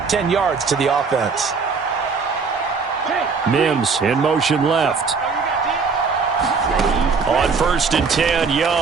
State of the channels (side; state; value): left; quieter; 5.1 dB